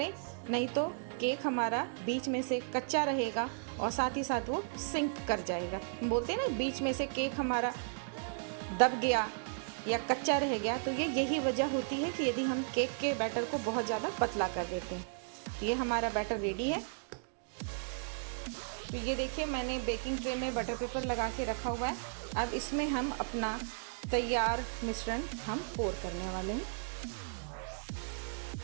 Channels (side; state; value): left; silent; digital silence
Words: नहीं तो केक हमारा बीच में से कच्चा रहेगा और साथ ही साथ वो सिंक कर जाएगा। बोलते हैं ना बीच में से केक हमारा दब गया या कच्चा रह गया, तो ये यही वजह होती है कि यदि हम केक के बैटर को बहुत ज़्यादा पतला कर देते हैं। ये हमारा बैटर रेडी है। तो ये देखिए मैंने बेकिंग ट्रे में बटर पेपर लगा के रखा हुआ है। अब इसमें हम अपना तैयार मिश्रण हम पोर करने वाले हैं।